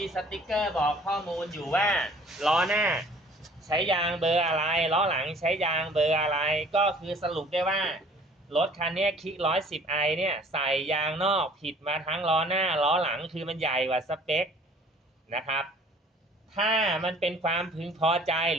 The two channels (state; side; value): normal; both; correlation 0.53